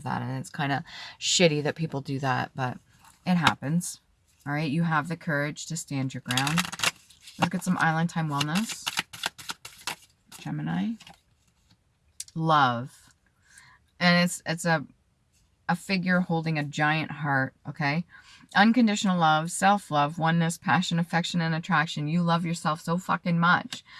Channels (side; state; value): both; identical; correlation 1.00